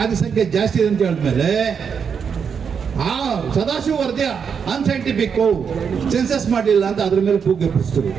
ಸಂಖ್ಯೆ ಜಾಸ್ತಿ ಇದೆ ಅಂತ ಹೇಳಿದ್ಮೇಲೆ ಆ ಸದಾಶಿವ ವರದಿ ಅನ್ಸೈಂಟಿಫಿಕ್, ಸೆನ್ಸಸ್ ಮಾಡಲಿಲ್ಲ ಅಂತ ಅದ್ರ ಮೇಲೆ ಕೂಗಿ ಎಬ್ಬಿಸಿದ್ರು.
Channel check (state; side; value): quieter; left; 6.7 dB